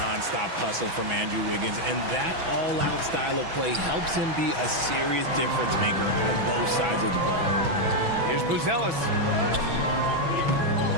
hustle from Andrew Wiggins, and that all-out style of play helps him be a serious difference maker on both sides of the ball. Here's Buzelis.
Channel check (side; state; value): left; late; 6.0 ms